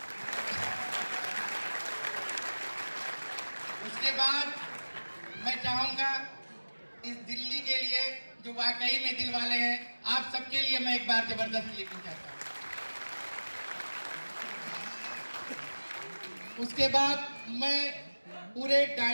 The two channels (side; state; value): both; inverted; correlation -1.00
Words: उसके बाद मैं चाहूंगा इस दिल्ली के लिए जो वाकई में दिल वाले हैं, आप सबके लिए मैं एक बार जबरदस्त क्लिपिंग चाहता हूं। उसके बाद मैं पूरे